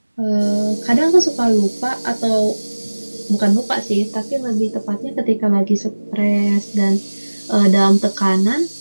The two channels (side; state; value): both; inverted; correlation -1.00